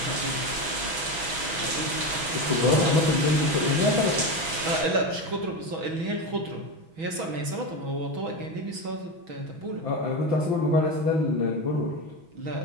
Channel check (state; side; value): late; left; 6.1 ms